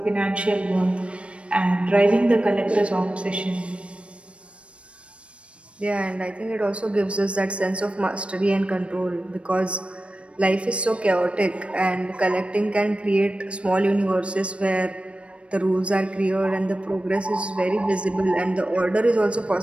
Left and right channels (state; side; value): late; left; 0.060 ms